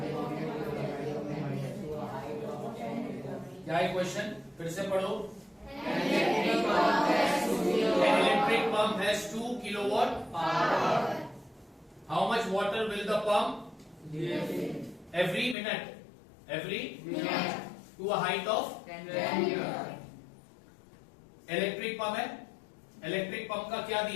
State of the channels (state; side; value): drops out; right; at 15.6 s